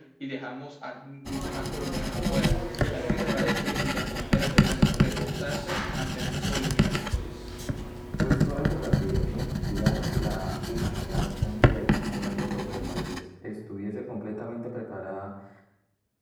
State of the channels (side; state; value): both; identical; correlation 1.00